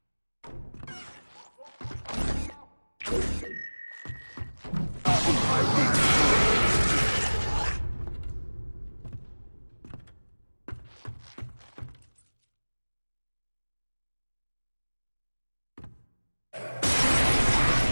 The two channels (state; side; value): inverted; both; correlation -1.00